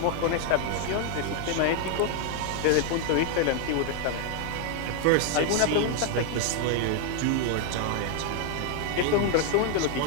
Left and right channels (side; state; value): both; different; correlation 0.00